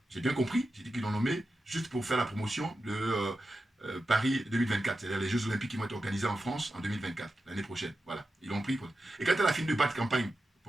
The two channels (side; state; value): both; normal; correlation 0.91